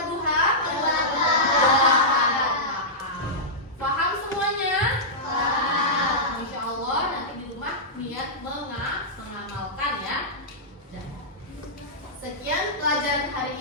duha? 8. Paham semuanya? Paham. Insya Allah nanti di rumah niat mengamalkan ya. Sekian pelajaran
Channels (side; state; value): both; normal; correlation -0.12